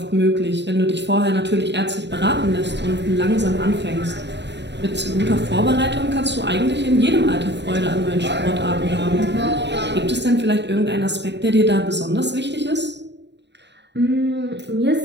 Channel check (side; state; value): left; late; 0.51 ms